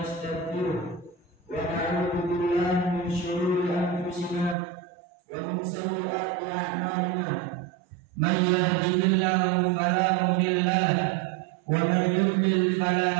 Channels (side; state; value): left; drops out; at 4.5 s